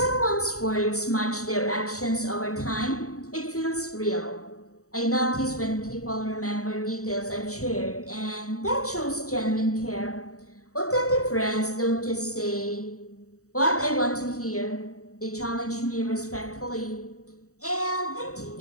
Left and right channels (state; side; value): late; right; 0.65 ms